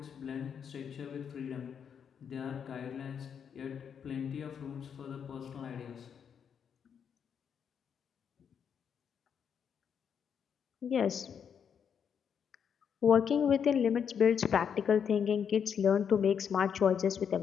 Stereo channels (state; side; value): quieter; right; 7.5 dB